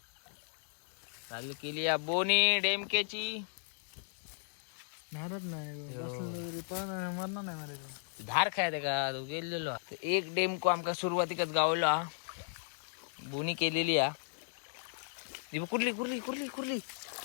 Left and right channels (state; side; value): silent; right; digital silence